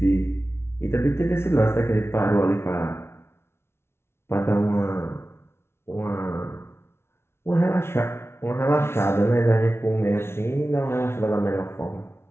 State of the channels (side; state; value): right; late; 0.12 ms